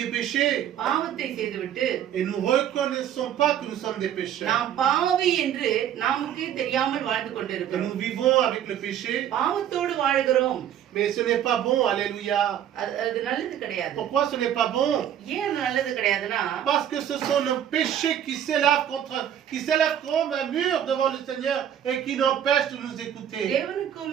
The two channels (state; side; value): quieter; left; 10.2 dB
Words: péchés பாவத்தை செய்துவிட்டு et nous reconnaissons pas que nous sommes des pécheurs. நாம் பாவி என்று நமக்கே தெரியாமல் வாழ்ந்து Que கொண்டிருக்கிறோம். nous vivons avec le péché, பாவத்தோடு வாழ்கிறோம். mais ce n'est pas bon. Alléluia. அது நல்லது கிடையாது. Pourquoi ce n'est pas bon? ஏன் அது நல்லது கிடையாதுன்னா, Parce que ce sont nos péchés qui s'élèvent comme un mur devant le Seigneur et qui n'empêchent de nous écouter.